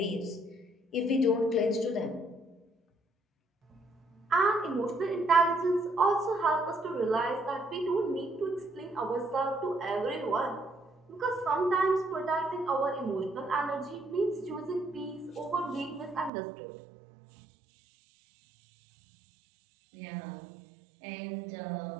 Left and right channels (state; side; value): drops out; left; at 16.3 s